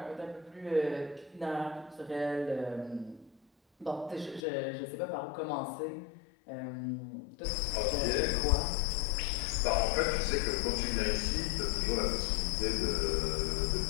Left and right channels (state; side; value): drops out; right; at 4.4 s